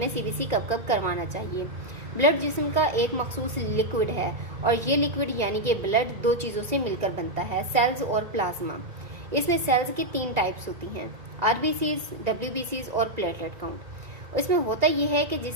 CBC कब कब करवाना चाहिए। ब्लड जिस्म का एक मखसूस लिक्विड है और ये लिक्विड यानी कि ब्लड दो चीज़ों से मिलकर बनता है, सेल्स और प्लाज्मा। इसमें सेल्स की 3 टाइप्स होती हैं, RBCs, WBCs और प्लेटलेट काउंट। इसमें होता यह है कि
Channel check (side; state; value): left; late; 2.0 ms